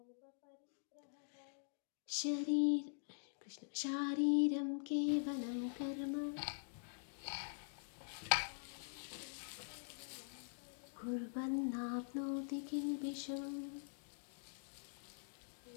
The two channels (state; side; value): silent; right; digital silence